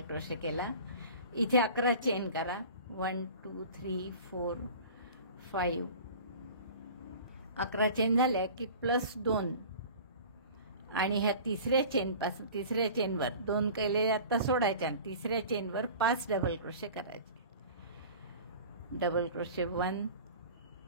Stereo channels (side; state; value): both; inverted; correlation -0.40